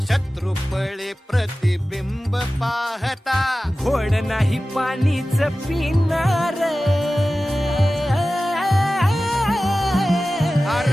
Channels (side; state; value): both; normal; correlation 0.95